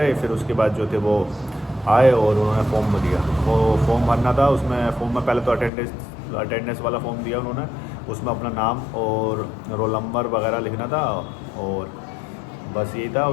फिर उसके बाद जो थे वो आए और उन्होंने फॉर्म दिया। वो फॉर्म भरना था। उसमें फॉर्म में पहले तो अटेंडेंस वाला फॉर्म दिया उन्होंने। उसमें अपना नाम और रोल नंबर वगैरह लिखना था, और बस यही था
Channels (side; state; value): right; drops out; at 5.7 s